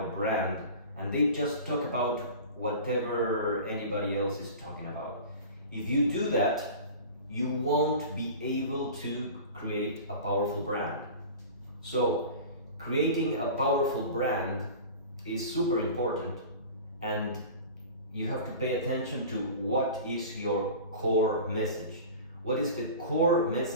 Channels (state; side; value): inverted; both; correlation -0.36